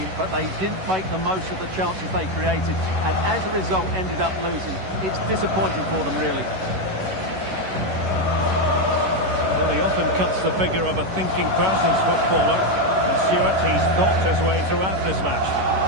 but they didn't make the most of the chances they created, and as a result ended up losing. It's disappointing for them, really. Well, he often cuts the figure of a thinking person's footballer, and Stuart, he's thought his way throughout this match.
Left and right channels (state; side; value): late; left; 11 ms